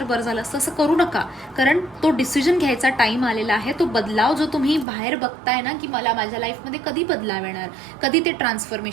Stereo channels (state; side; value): drops out; left; at 4.9 s